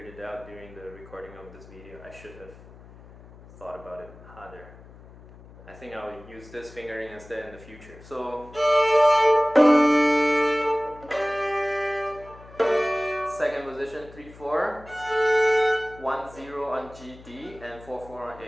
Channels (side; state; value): left; noise; hum, 20 dB below the sound